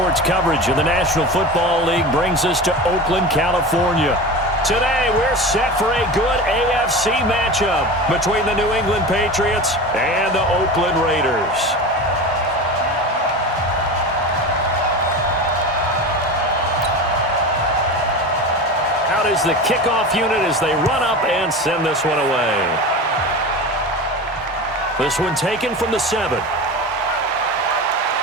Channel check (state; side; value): normal; both; correlation 0.29